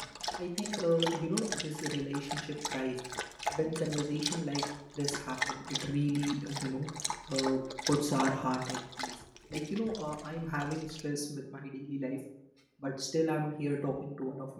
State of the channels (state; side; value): identical; both; correlation 1.00